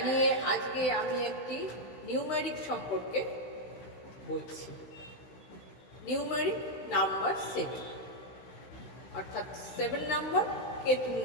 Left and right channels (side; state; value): right; late; 15 ms